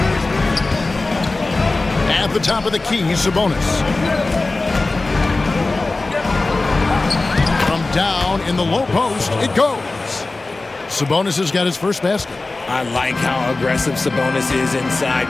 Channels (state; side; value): quieter; right; 3.3 dB